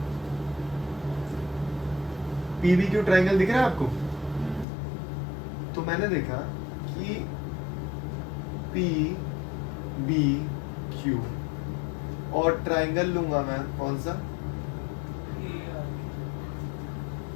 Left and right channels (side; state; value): right; drops out; at 4.7 s